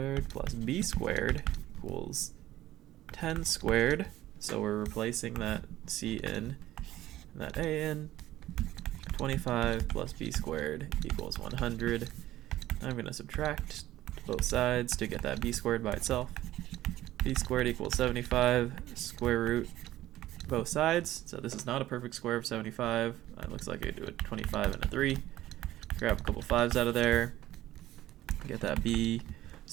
plus B squared equals 10 squared, so we're replacing that C in and that A in. 25 plus B squared equals 100. I'm going to subtract both sides to get that B squared by itself. B squared equals 75, square root both sides, so this is not a perfect square of 75. It looks like I do a 25 and a 3. Grab a couple 5s out of there, get that B.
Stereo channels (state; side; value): quieter; left; 14.8 dB